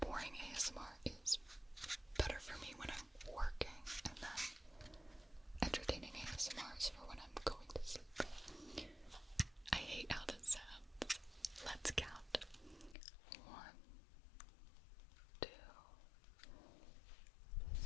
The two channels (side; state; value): right; drops out; at 13.0 s